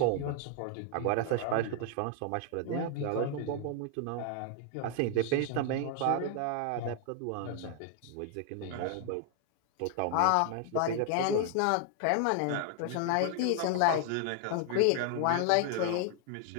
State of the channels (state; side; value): different; both; correlation 0.00